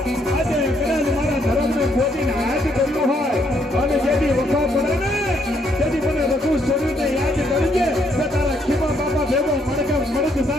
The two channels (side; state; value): both; normal; correlation 0.71